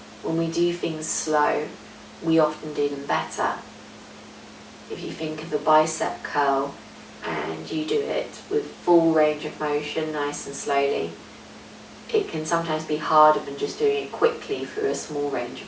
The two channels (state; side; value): identical; both; correlation 1.00